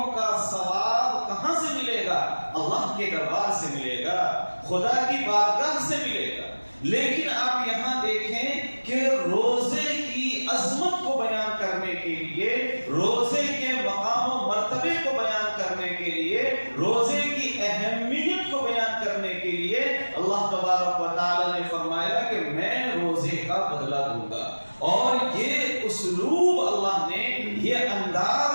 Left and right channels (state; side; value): inverted; both; correlation -1.00